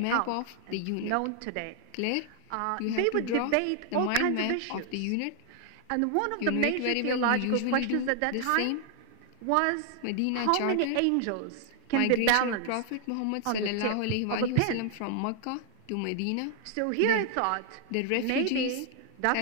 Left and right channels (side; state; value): both; different; correlation 0.00